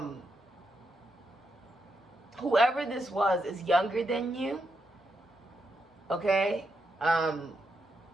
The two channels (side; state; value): both; normal; correlation 0.82